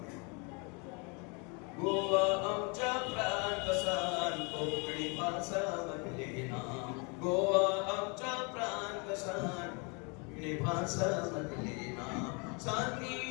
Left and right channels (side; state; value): right; quieter; 32.7 dB